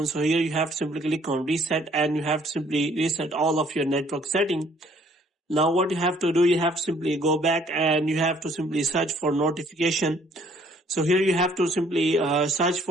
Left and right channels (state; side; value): normal; both; correlation 0.61